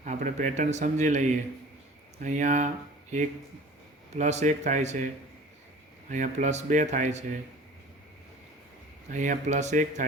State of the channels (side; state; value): both; normal; correlation 0.44